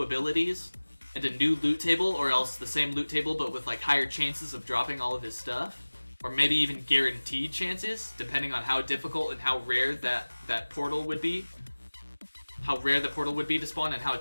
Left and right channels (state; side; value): inverted; both; correlation -1.00